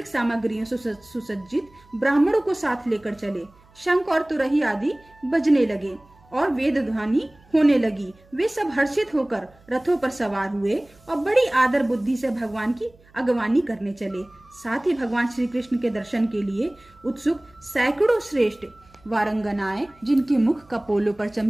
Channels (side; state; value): right; noise; hum, 29 dB below the sound